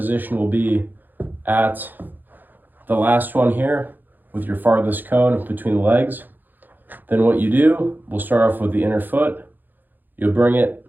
will be at the last one here with your farthest cone between the legs. Then what you do, we'll start off with the inner foot. You'll bring it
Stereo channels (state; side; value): late; left; 0.088 ms